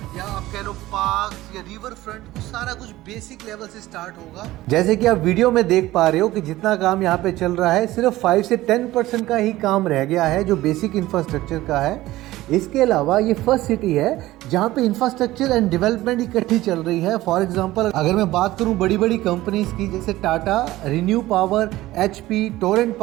या आप कह लो पार्क्स या रिवर फ्रंट, वो सारा कुछ बेसिक लेवल से स्टार्ट होगा। जैसे कि आप वीडियो में देख पा रहे हो कि जितना काम यहाँ पे चल रहा है सिर्फ 5 से 10% का ही काम रह गया है जो बेसिक इंफ्रास्ट्रक्चर का है। इसके अलावा ये फर्स्ट सिटी है जहाँ पे इंफ्रास्ट्रक्चर एंड डेवलपमेंट इकट्ठी चल रही है। फॉर एग्जांपल अगर मैं बात करूँ बड़ी बड़ी कंपनीज की, जैसे Tata, renew power, HP, Torrent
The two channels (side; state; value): left; quieter; 16.7 dB